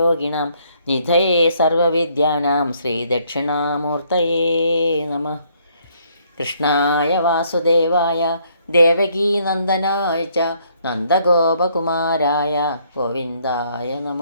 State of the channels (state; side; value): inverted; both; correlation -0.68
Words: നിധയേ സർവവിദ്യാനാം ശ്രീദക്ഷിണാമൂർത്തയേ നമഃ. കൃഷ്ണായ വാസുദേവായ ദേവകീനന്ദനായ ച നന്ദഗോപകുമാരായ ഗോവിന്ദായ